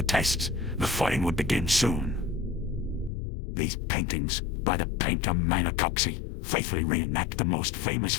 tests. The fighting would begin soon. These paintings, by the painter Manicoxi, faithfully reenact the most famous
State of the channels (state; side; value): drops out; right; at 3.1 s